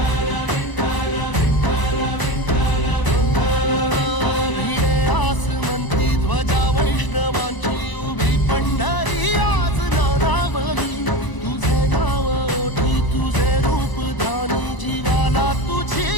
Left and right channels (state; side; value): late; right; 1.0 ms